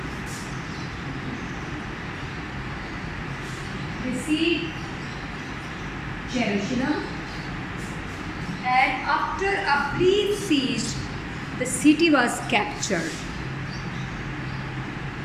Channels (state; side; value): identical; both; correlation 1.00